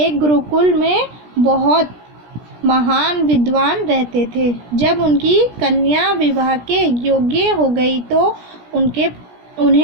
गुरुकुल में बहुत महान विद्वान रहते थे। जब उनकी कन्या विवाह के योग्य हो गई तो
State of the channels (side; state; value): left; late; 17 ms